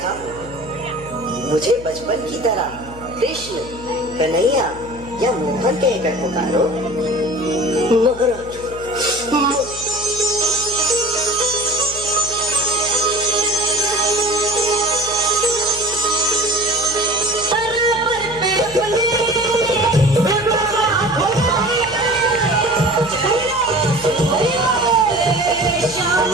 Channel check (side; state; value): left; noise; hum, 16 dB below the sound